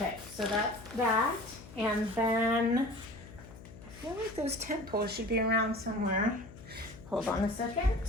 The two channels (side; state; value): left; noise; hum, 17 dB below the sound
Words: so that's that. And then I feel like those tent poles should be around somewhere. Hold on a second.